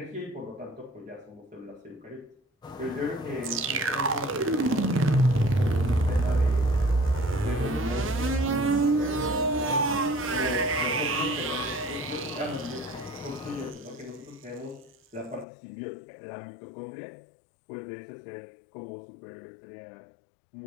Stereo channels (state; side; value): drops out; right; at 15.5 s